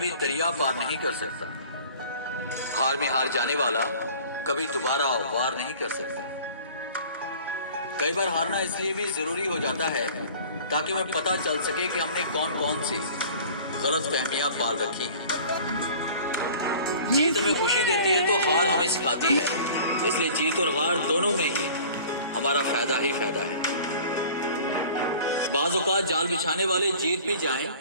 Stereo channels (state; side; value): inverted; both; correlation -0.46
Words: दरिया पार नहीं कर सकता। हार में हार जाने वाला कभी दोबारा वार नहीं कर सकता। कई बार हारना इसलिए भी जरूरी हो जाता है ताकि हमें पता चल सके कि हमने कौन कौन सी गलत फहमियां पाल रखी हैं। जीत हमें खुशी देती है तो हार हमें सिखाती है, इसलिए जीत और हार दोनों में ही हमारा फायदा ही फायदा है। बाज़ औक़ात जाल बिछाने वाले जीत भी जाएं